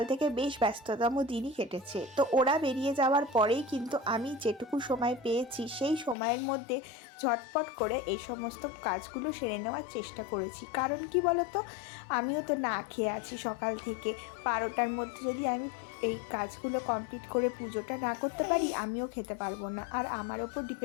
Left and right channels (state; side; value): drops out; right; at 6.2 s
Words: থেকে বেশ ব্যস্ততম দিনই কেটেছে। তো ওরা বেরিয়ে যাওয়ার পরেই কিন্তু আমি যেটুকু সময় পেয়েছি সেই সময়ের মধ্যে ঝটপট করে এই সমস্ত কাজগুলো সেরে নেওয়ার চেষ্টা করেছি। কারণ কি বলতো, আমিও তো না খেয়ে আছি সকাল থেকে। 12টার মধ্যে যদি আমি এই কাজগুলো কমপ্লিট করে পুজোটা না করতে পারি, আমিও খেতে পারবো না। আর আমার ওপর